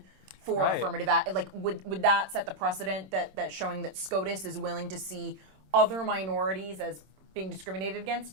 for affirmative act? Like, would that set the precedent that showing that SCOTUS is willing to see other minorities as being discriminated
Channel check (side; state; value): left; late; 26 ms